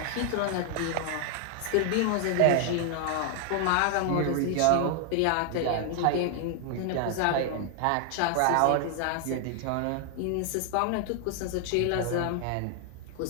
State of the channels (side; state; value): both; different; correlation 0.00